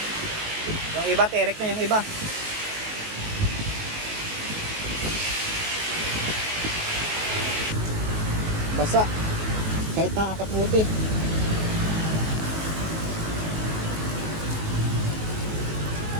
Yung iba, terek na yung iba. Basa. Kahit nakakaputi.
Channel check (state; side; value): late; left; 19 ms